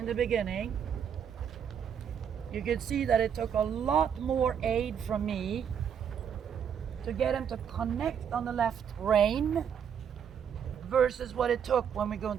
the beginning you could see that it took a lot more aid from me to get him to connect on the left rein versus what it took when we go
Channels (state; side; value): quieter; left; 8.0 dB